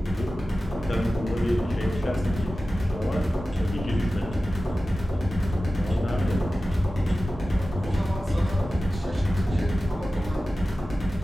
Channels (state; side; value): normal; both; correlation 0.95